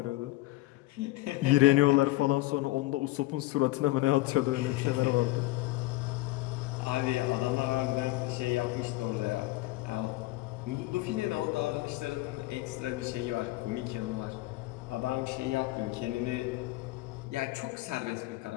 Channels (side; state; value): right; quieter; 18.6 dB